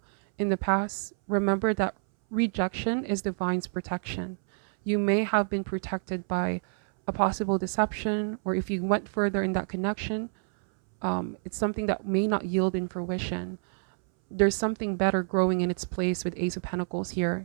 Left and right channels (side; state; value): left; silent; 59 dB below the other